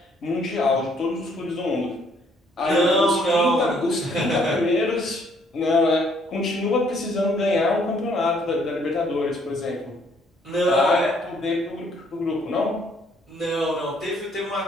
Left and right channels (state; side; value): normal; both; correlation 0.65